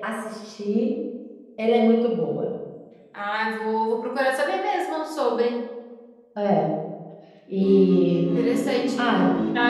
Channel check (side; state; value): both; identical; correlation 1.00